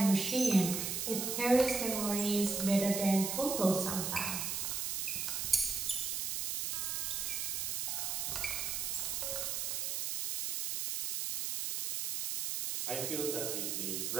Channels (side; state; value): right; noise; hiss, 1 dB below the sound